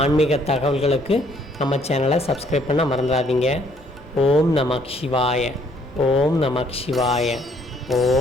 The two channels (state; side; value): noise; left; hum, 30 dB below the sound